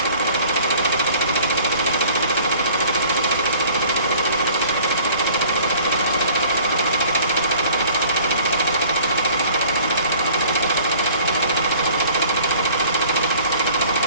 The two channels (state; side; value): inverted; both; correlation -0.51